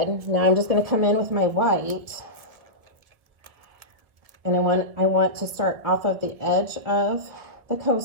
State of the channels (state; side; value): late; left; 1.7 ms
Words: Now I'm just going to come in with my white. And I want to start off of the edge of the